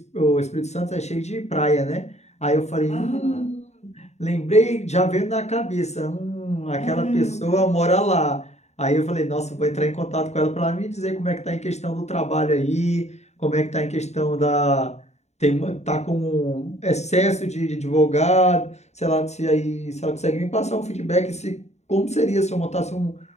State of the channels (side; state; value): right; late; 0.32 ms